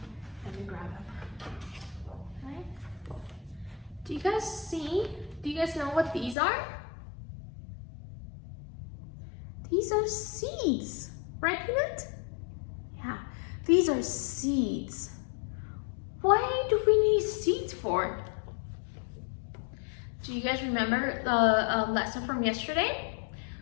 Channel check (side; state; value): right; drops out; at 6.4 s